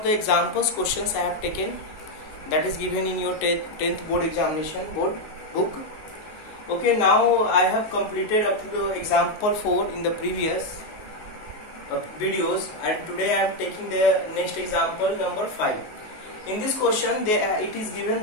the examples questions I have taken that is given in your 10th board examination board book. Okay, now I have completed up to the example 4 in the previous videos, and today I am taking the next example number 5. In this question it is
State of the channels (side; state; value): right; late; 19 ms